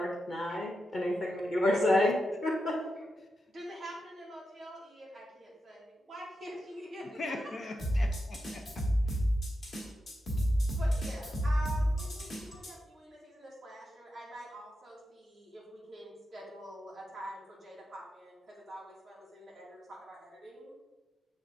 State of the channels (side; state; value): both; normal; correlation 0.88